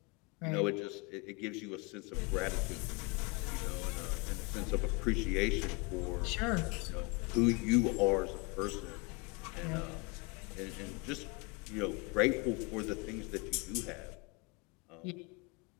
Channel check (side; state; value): right; quieter; 29.2 dB